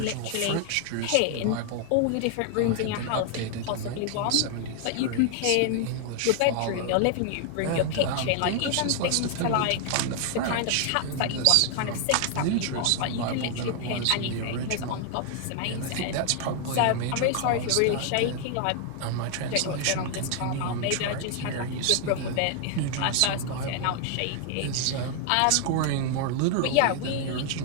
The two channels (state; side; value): different; both; correlation 0.00